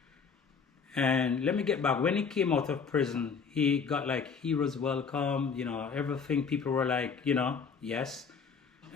And let me get back. When he came out of prison, he got like heroes welcome, everything. People were like, yes.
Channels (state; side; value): quieter; right; 5.8 dB